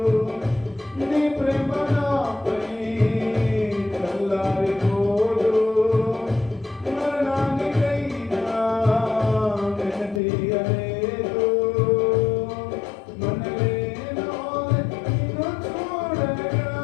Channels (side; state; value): right; drops out; at 10.2 s